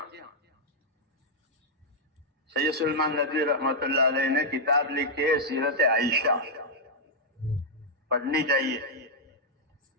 سید سلمان ندوی رحمۃ اللہ علیہ نے کتاب لکھی ہے سیرت عائشہ، پڑھنی چاہیے.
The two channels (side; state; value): both; normal; correlation -0.06